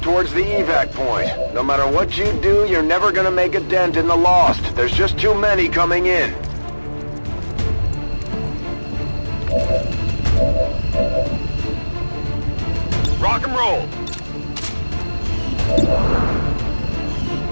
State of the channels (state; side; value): inverted; both; correlation -1.00